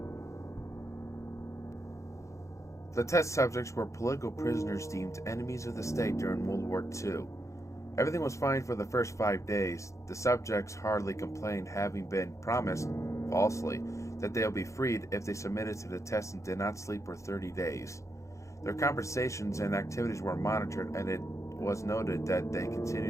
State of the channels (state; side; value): late; right; 0.15 ms